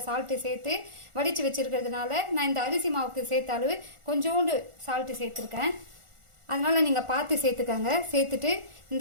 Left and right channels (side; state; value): left; late; 1.4 ms